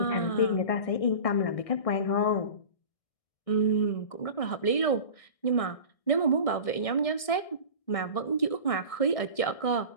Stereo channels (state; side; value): late; right; 1.6 ms